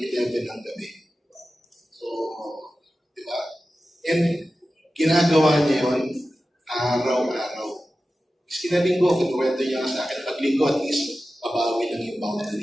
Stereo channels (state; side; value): normal; both; correlation 0.94